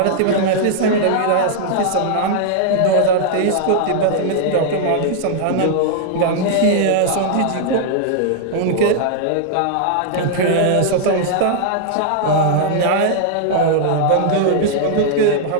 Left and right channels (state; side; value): different; both; correlation -0.01